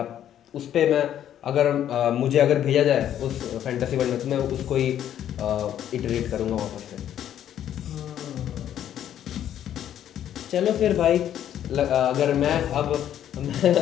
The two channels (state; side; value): quieter; right; 10.7 dB